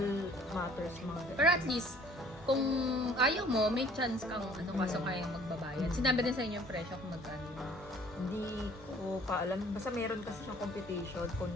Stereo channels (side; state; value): both; normal; correlation 0.54